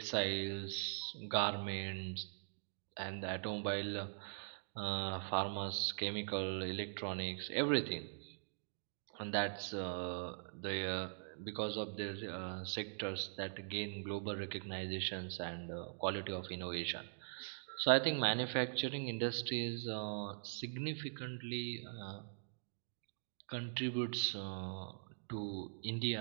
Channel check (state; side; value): silent; left; digital silence